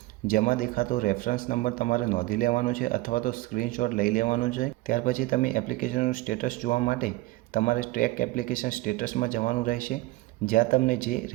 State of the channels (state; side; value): quieter; left; 19.3 dB